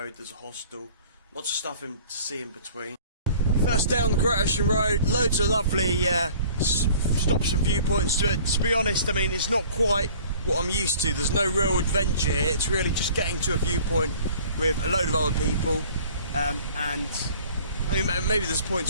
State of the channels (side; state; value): both; inverted; correlation -0.49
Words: there's a hostel. Lots of stuff to see in between. First day on the Great Ocean Road, loads of lovely stops and viewpoints to it. To be honest, I mean, it's not quite what I'm used to. There's no real adventure here. It's really just getting to a viewpoint with a load of other people. And I mean, maybe there's